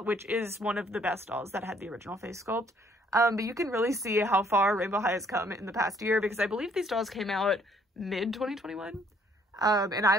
which is one of the best dolls that had the original face sculpt. But you can really see how far Rainbow High has come in the past year, because I believe these dolls came out mid-2021. And I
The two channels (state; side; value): normal; both; correlation 0.64